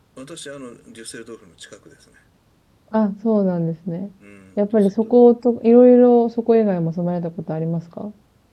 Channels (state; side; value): identical; both; correlation 1.00